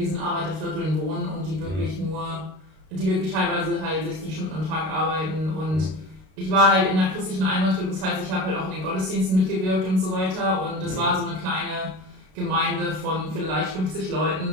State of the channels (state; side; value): late; left; 32 ms